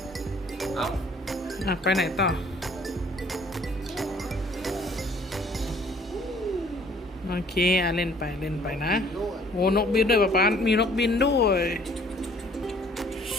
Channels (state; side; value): normal; both; correlation 0.57